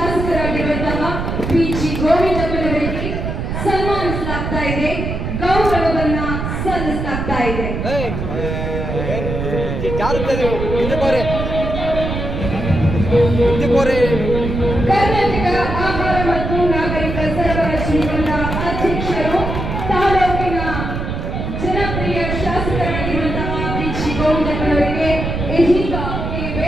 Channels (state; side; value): noise; right; rumble, 4 dB below the sound